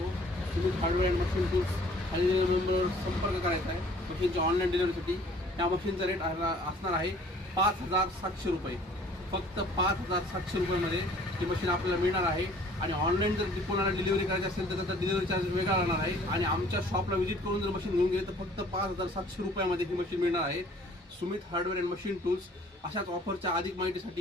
तुम्ही हार्डवेअर अँड मशीन टूल्स खाली नंबरवर संपर्क करायचा आहे मशीनच्या ऑनलाईन डिलिव्हरीसाठी। त्या मशीनचा रेट असणार आहे 5700 रुपये। फक्त 5700 रुपयामध्ये ही मशीन आपल्याला मिळणार आहे। आणि ऑनलाईन जर कोणाला डिलिव्हरी करायची असेल तर त्याचा डिलिव्हरी चार्ज वेगळा राहणार आहे। आणि आमच्या शॉपला व्हिजिट करून जर मशीन घेऊन गेले तर फक्त 5700 रुपयामध्ये ही मशीन मिळणार आहे। Sumit hardware and machine tools अशाच ऑफरच्या अधिक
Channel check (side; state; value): both; normal; correlation 0.55